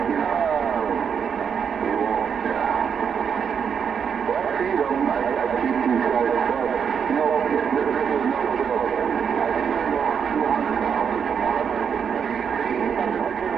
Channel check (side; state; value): left; quieter; 7.1 dB